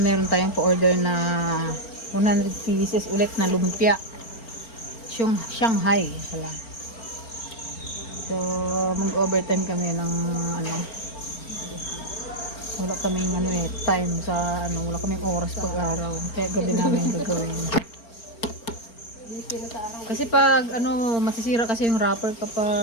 tayong pa-order na 100 pieces ulit na lumpia. Shanghai pala. So, mag-overtime kami ng wala kaming time sa wala kaming oras pag-araw. Kaya gabi namin gagawin. Kasi pag masisira kasi yung wrapper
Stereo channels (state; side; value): late; right; 4.4 ms